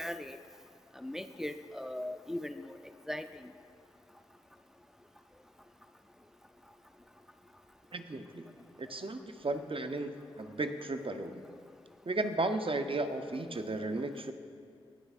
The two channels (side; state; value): both; normal; correlation 0.63